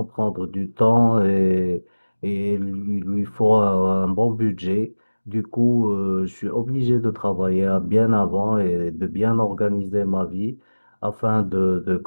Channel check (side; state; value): both; inverted; correlation -1.00